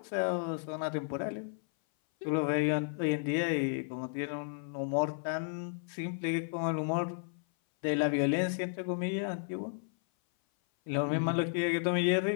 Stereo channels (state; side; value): silent; right; 56 dB below the other